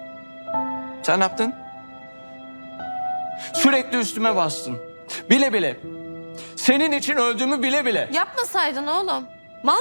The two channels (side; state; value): both; inverted; correlation -1.00